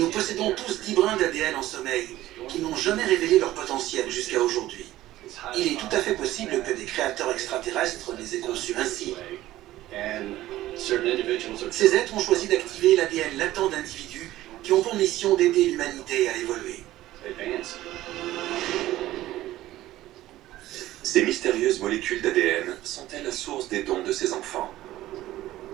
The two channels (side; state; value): left; quieter; 15.3 dB